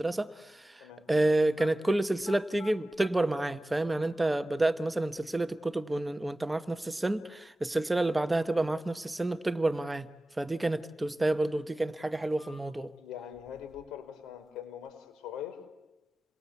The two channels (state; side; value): normal; both; correlation 0.96